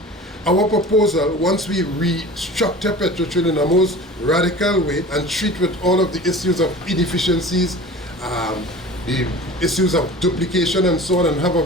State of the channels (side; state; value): both; normal; correlation 0.39